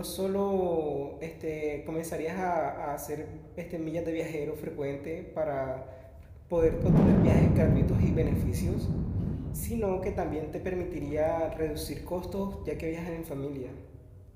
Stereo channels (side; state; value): both; identical; correlation 1.00